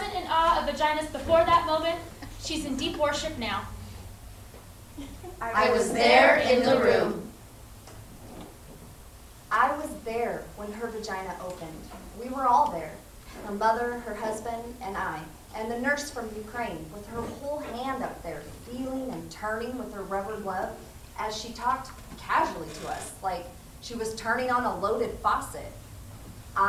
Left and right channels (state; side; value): identical; both; correlation 1.00